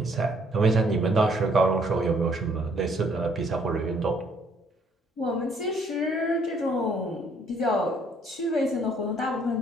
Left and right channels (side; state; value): both; normal; correlation 0.65